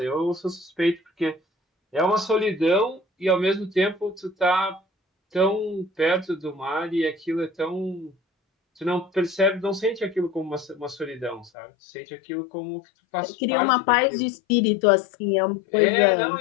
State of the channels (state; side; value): drops out; right; at 11.5 s